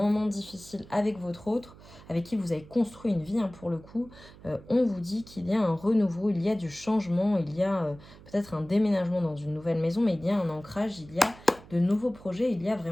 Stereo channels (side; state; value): right; noise; hum, 21 dB below the sound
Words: difficiles avec votre autre, avec qui vous avez construit une vie pour le coup, on vous dit qu'il y a un renouveau, il y a du changement, il y a peut-être un déménagement dans une nouvelle maison, mais il y a un ancrage, il y a de nouveaux projets, il y a